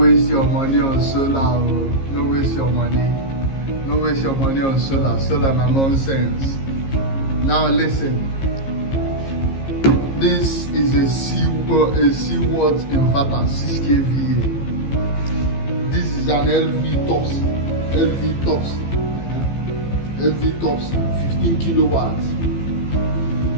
your money on solar. No waste your money. No waste your money on solar. Solar na nonsense. Now listen. This is a C-watt inverter, 6 kVA. This is an LV tops 15 kilowatts.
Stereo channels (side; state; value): right; late; 15 ms